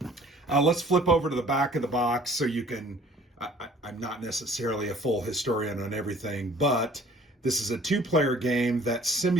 Let's flip over to the back of the box so you can, I'm not necessarily a full historian on everything, but this is a 2-player game that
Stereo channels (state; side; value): normal; both; correlation 0.53